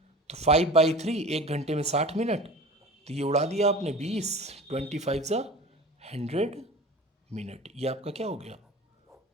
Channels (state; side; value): normal; both; correlation 0.37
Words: तो 5/3, एक घंटे में 60 मिनट, तो ये उड़ा दिया आपने 20, 25 ज़ा 100 मिनट। ये आपका क्या हो गया